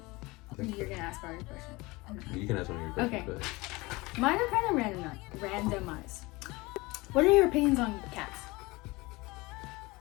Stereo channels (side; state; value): right; quieter; 22.9 dB